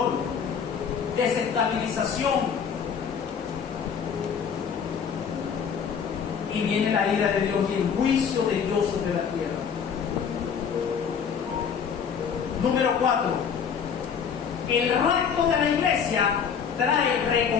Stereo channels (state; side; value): quieter; right; 7.0 dB